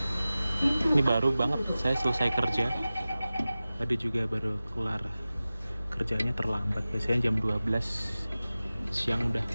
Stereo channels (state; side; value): inverted; both; correlation -0.96